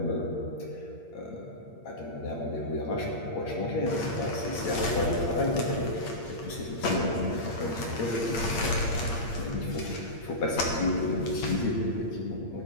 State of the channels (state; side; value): late; right; 8.7 ms